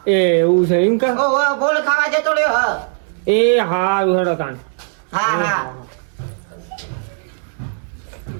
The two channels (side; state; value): left; silent; 67 dB below the other